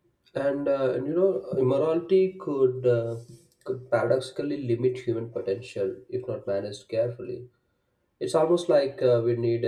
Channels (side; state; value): both; identical; correlation 1.00